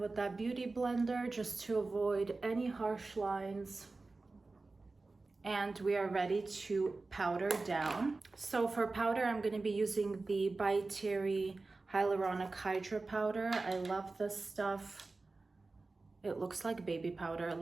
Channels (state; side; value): quieter; left; 3.6 dB